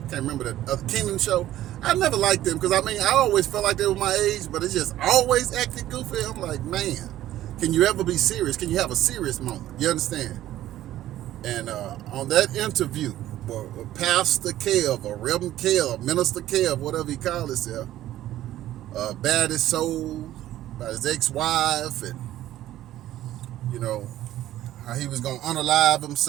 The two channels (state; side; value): quieter; left; 13.7 dB